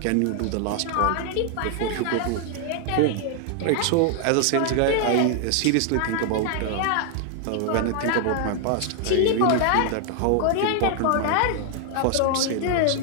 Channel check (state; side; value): different; both; correlation 0.00